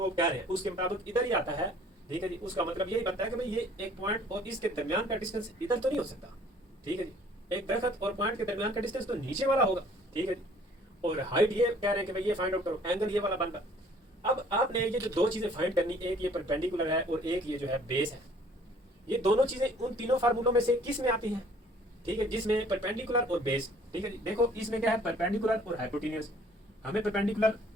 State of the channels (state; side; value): normal; both; correlation 0.56